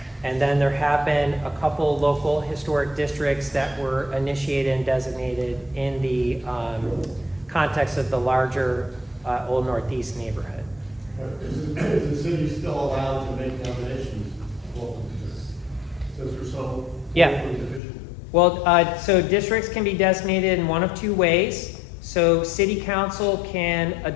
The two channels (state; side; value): drops out; right; at 17.8 s